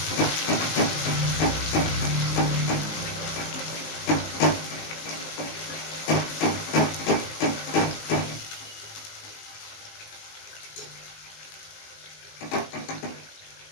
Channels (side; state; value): right; late; 19 ms